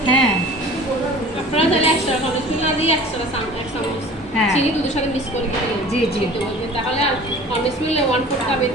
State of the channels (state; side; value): normal; both; correlation 0.44